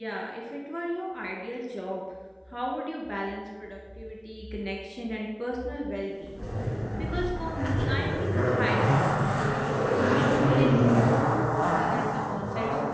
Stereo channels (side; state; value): both; identical; correlation 1.00